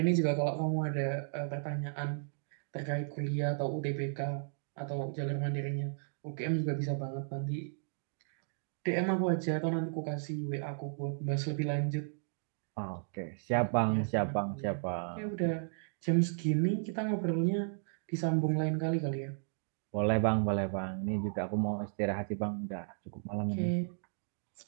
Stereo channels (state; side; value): silent; left; digital silence